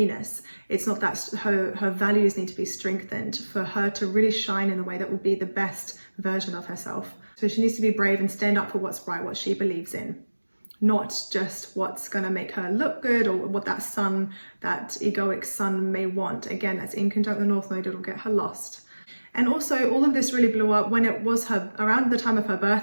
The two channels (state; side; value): inverted; both; correlation -1.00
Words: It's not that her values need to be strengthened for her to really shine in the way that will be the best version of herself. So she needs to be brave and stand up for what's right, what she believes in, not just what's going to make her look good, or what that sun, that egoic sun may want. Again, that's in conjunct the North Node, it'll get her lost. And also, all of this really blew up when it was around the time of her